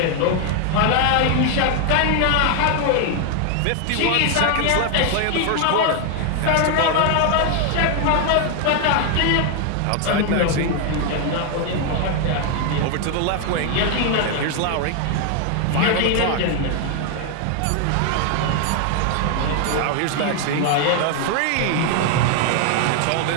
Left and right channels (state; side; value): different; both; correlation 0.00